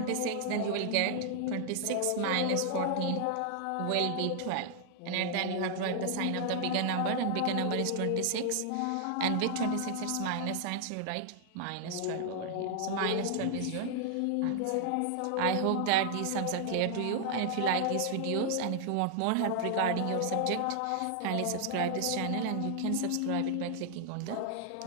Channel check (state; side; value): different; both; correlation 0.00